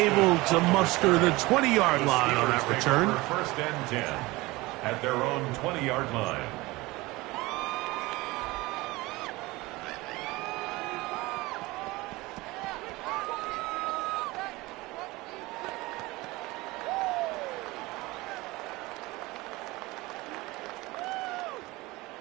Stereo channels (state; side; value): quieter; left; 21.2 dB